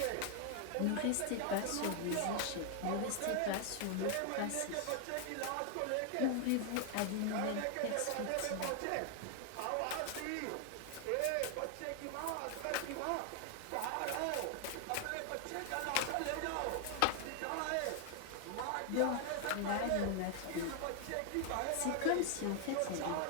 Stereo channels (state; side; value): different; both; correlation 0.00